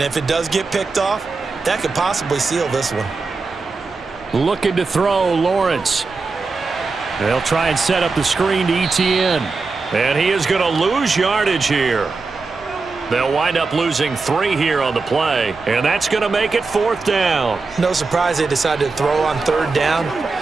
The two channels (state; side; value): quieter; left; 4.1 dB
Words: if it does get picked off, that could possibly seal this one. Looking to throw, Lawrence. They'll try and set up the screen to Etienne. And he is going to lose yardage here. They'll wind up losing 3 here on the play, and that's going to make it fourth down. No surprise they decided to throw on third down.